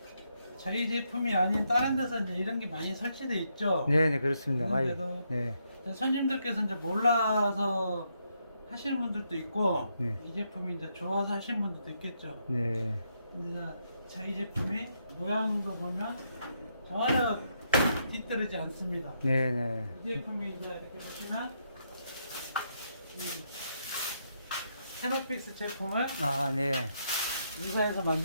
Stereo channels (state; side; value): inverted; both; correlation -0.78